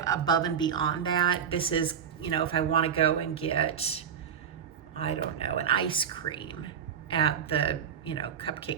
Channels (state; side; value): quieter; left; 7.9 dB